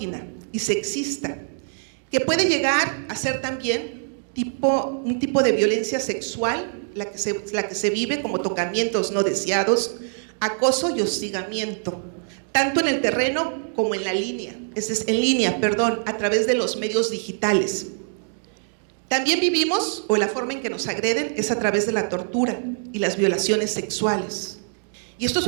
y sexista, que puede llegar a ser también un tipo de violencia sexual, la que se vive como tocamientos no deseados, acoso y hostigamiento, tanto en el terreno como en línea, a través de los medios digitales. También vivimos, o la forma en que nos agreden es a través de la tortura y las violaciones sexuales. Y esto es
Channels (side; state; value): left; silent; digital silence